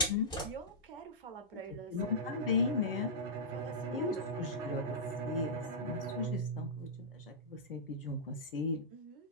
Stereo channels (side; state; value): both; normal; correlation -0.13